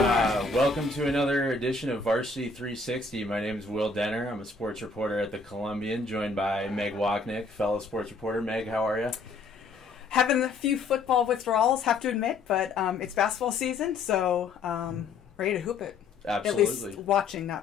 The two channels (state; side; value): quieter; right; 4.2 dB